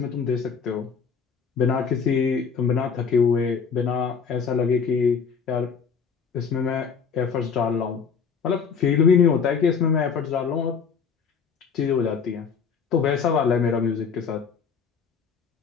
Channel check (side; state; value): right; quieter; 6.0 dB